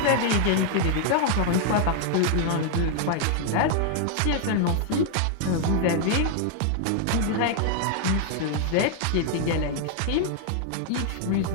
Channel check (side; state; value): both; different; correlation 0.00